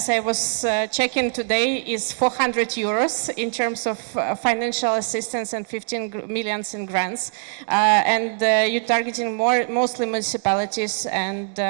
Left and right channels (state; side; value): silent; left; digital silence